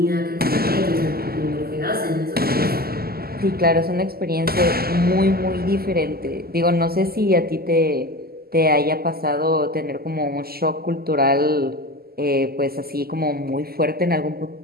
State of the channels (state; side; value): late; left; 0.45 ms